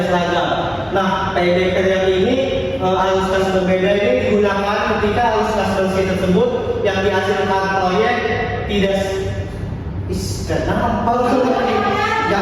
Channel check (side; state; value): both; identical; correlation 1.00